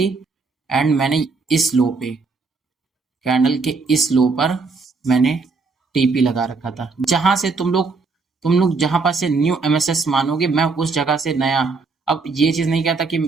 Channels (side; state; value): left; quieter; 4.3 dB